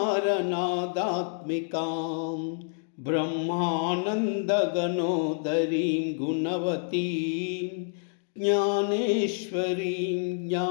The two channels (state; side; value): silent; right; digital silence